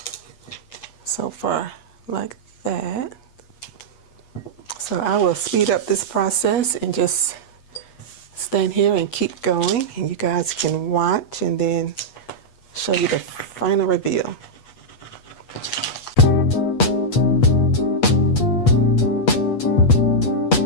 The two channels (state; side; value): late; right; 8.3 ms